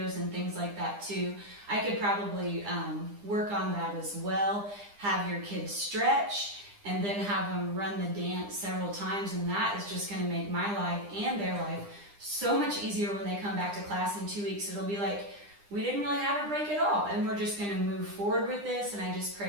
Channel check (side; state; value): left; late; 9.9 ms